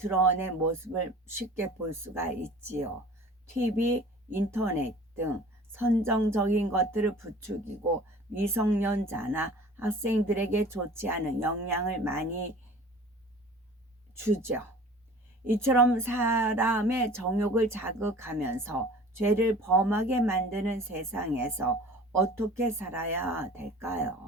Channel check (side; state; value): both; normal; correlation 0.44